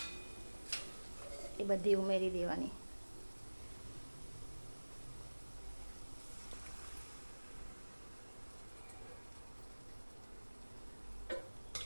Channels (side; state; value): both; inverted; correlation -1.00